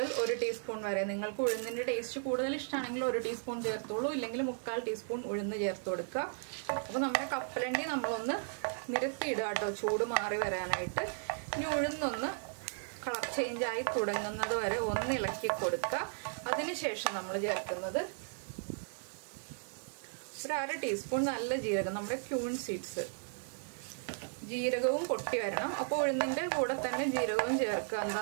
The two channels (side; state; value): left; silent; digital silence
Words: 1 ടീസ്പൂൺ വരെ, നിങ്ങൾക്ക് ഉഴുന്നിൻ്റെ ടേസ്റ്റ് കൂടുതൽ ഇഷ്ടമാണെങ്കിൽ 1 ടീസ്പൂൺ ചേർത്തോളൂ, ഇല്ലെങ്കിൽ 1/4 ടീസ്പൂൺ ഉഴുന്ന് ചേർത്ത് കൊടുക്കുക. അപ്പോൾ നമ്മുടെ കപ്പലണ്ടി നമ്മളൊന്ന് നിരത്തിയിടുക കേട്ടോ, ചൂട് മാറി വരാനായിട്ട്. ഇനി ഉഴുന്നൊന്ന് കളർ ചേഞ്ച് ആയി തുടങ്ങുന്നത് വരെ ഒന്ന് ഇളക്കി കൊടുക്കുക. അതിനുശേഷം നമ്മൾ ചേർക്കുന്നത് ഒരു 1/2 ടീസ്പൂൺ നല്ല ജീരകം, നമ്മുടെ ക്യൂൺ സീഡ്സ്. ജീരകവും പൊട്ടി വരണം. അപ്പോൾ ഉഴുന്നിൻ്റെ കൂടെ തന്നെ ജീരകവും ചേർക്കുക.